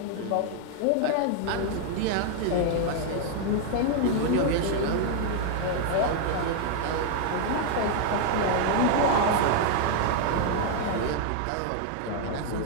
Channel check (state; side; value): different; both; correlation 0.00